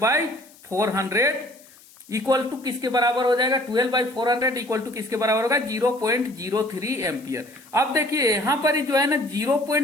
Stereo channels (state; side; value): noise; left; hiss, 25 dB below the sound